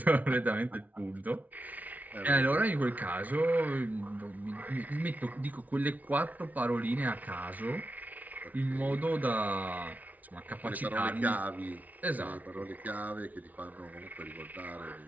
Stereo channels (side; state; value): left; late; 0.075 ms